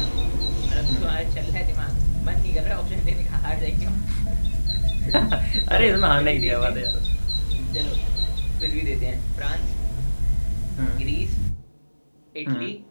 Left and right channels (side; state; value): both; inverted; correlation -1.00